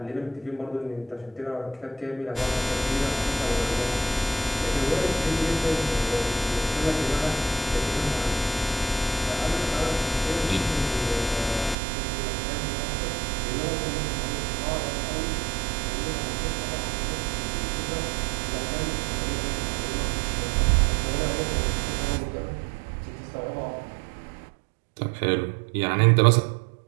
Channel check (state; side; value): drops out; left; at 11.8 s